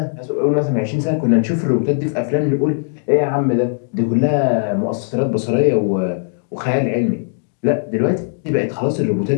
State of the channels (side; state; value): right; silent; digital silence